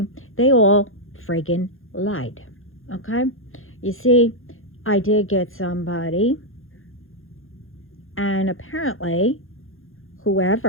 they all friggin' lied. Okay? You see, I did get somebody, and apparently,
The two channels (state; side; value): late; right; 0.60 ms